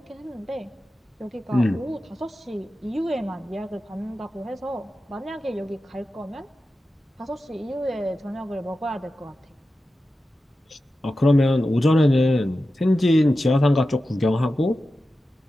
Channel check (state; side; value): normal; both; correlation 0.93